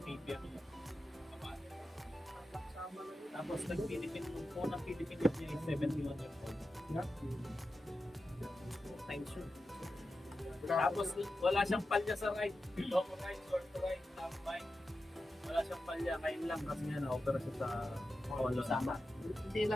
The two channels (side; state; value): both; normal; correlation 0.91